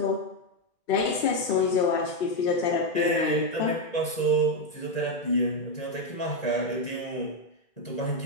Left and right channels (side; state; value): right; late; 1.9 ms